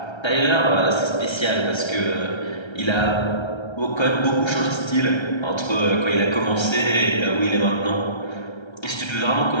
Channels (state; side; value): late; right; 1.3 ms